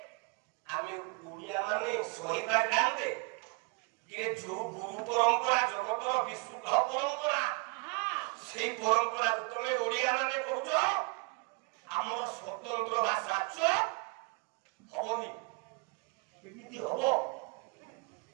ଆମେ ଓଡ଼ିଆ ମାନେ ସହିପାରିଥାନ୍ତେ ଯେ ଯୋଉ ଗୁରୁ ପରମ୍ପରା ଜଗତର ବିଶୁଦ୍ଧ ପରମ୍ପରା, ସେଇ ପରମ୍ପରାକୁ ତମେ ଓଡ଼ିଆ ମାନେ କହୁଛ ଆମର ସ୍ୱତନ୍ତ୍ର ଭାଷା ହବନି। କେମିତି ହବ?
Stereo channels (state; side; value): quieter; left; 31.8 dB